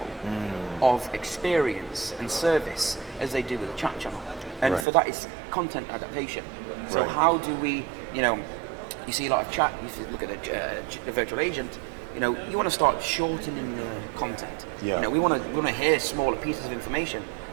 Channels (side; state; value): left; drops out; at 4.9 s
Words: of experience and service as they do with the chat channel? And for that, it's content adaptation. So how do we, you see a lot of chat, if you look at a virtual agent, you want to start shortening the content. Yeah. We want to hear smaller pieces of information